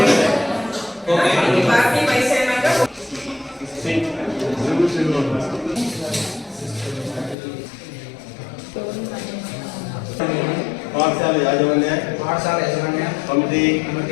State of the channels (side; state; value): right; drops out; at 7.4 s